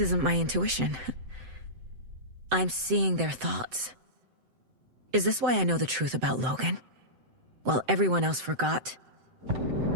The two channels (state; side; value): late; left; 7.8 ms